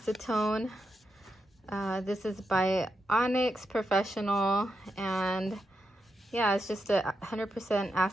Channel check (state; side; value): normal; both; correlation 0.85